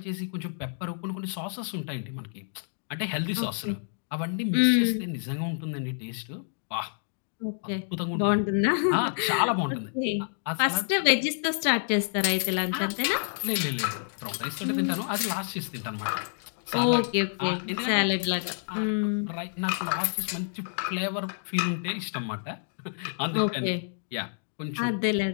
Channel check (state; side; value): silent; right; digital silence